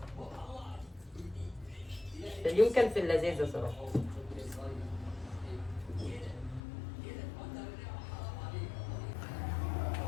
اليوم كان في اللذيذه صراحه.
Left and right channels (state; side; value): drops out; right; at 6.6 s